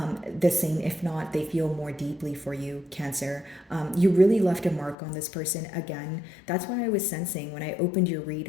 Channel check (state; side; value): drops out; right; at 5.0 s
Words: the same. If not, they feel more deeply for you, Cancer. You really left a mark on this person. Again, that's why I was sensing when I opened your